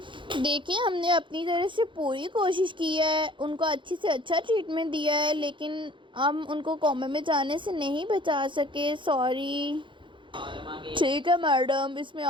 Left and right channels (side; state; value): left; late; 0.24 ms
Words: देखिए, हमने अपनी तरफ से पूरी कोशिश की है, उनको अच्छी से अच्छा ट्रीटमेंट दिया है, लेकिन हम उनको कोमे में जाने से नहीं बचा सके। सॉरी। ठीक है मैडम, इसमें